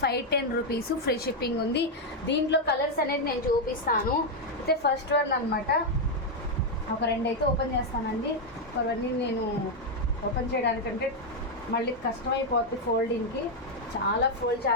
510 rupees, free shipping ఉంది. దీంట్లో కలర్స్ అనేది నేను చూపిస్తాను. అయితే ఫస్ట్ వన్ అనమాట, ఒక రెండు అయితే ఓపెన్ చేస్తానండి. అవన్నీ నేను ఓపెన్ చేయడానికంటే మళ్ళీ కష్టమైపోతుంది ఫోల్డింగ్కి, చాలా ఫోల్డ్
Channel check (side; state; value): both; normal; correlation 0.01